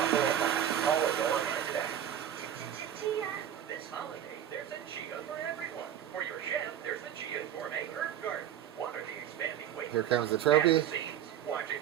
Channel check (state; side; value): quieter; left; 10.2 dB